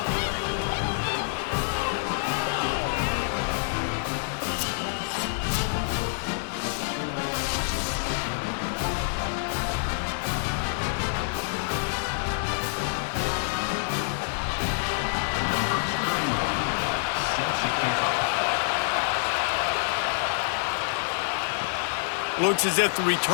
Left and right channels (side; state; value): right; silent; digital silence